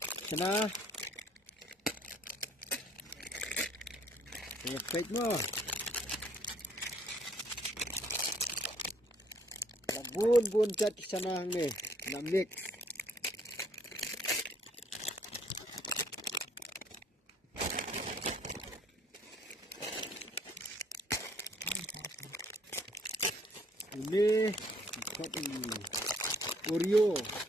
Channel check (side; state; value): both; normal; correlation 0.63